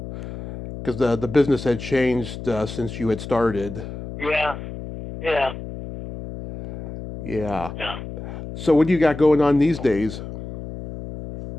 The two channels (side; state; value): left; noise; hum, 10 dB below the sound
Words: Because the business had changed since you had started. Yeah. Yeah. So what do you got going on these days?